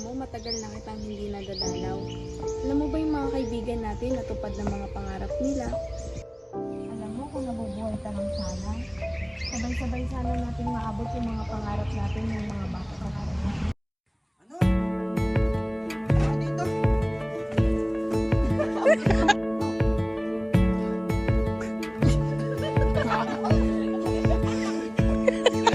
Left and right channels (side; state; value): both; identical; correlation 1.00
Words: mo, matagal na kitang hindi nadadalaw. Alam mo ba yung mga kaibigan natin natupad ng mga pangarap nila? Alam mo kung nabubuhay ka lang sana, sabay-sabay sana natin maabot yung mga pangarap natin ng mga bata pa natin. Ano? Ano dito?